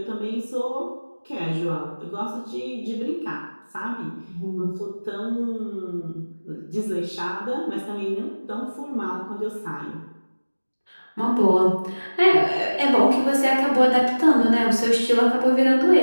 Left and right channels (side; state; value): both; inverted; correlation -1.00